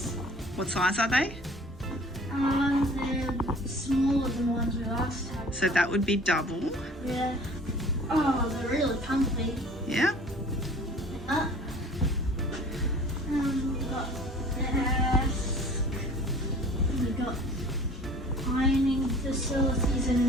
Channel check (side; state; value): both; normal; correlation 0.48